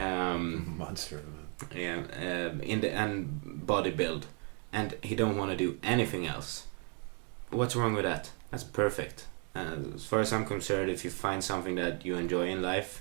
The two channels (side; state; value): left; quieter; 39.0 dB